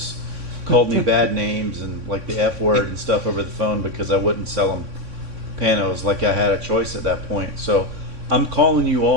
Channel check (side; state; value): left; late; 3.6 ms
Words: called me bad names and like the F word and stuff over the phone because I wouldn't sell them Panos like I had a choice at that point. So I'm calling you